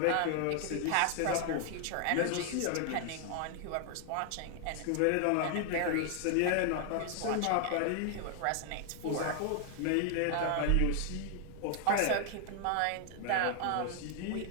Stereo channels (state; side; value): different; both; correlation 0.00